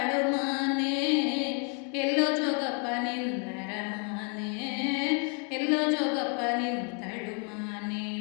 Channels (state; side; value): quieter; right; 36.8 dB